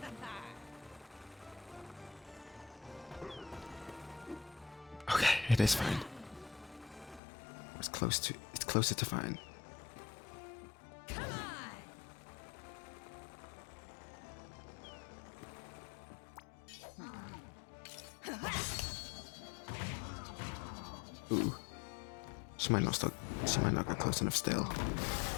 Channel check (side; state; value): right; drops out; at 7.2 s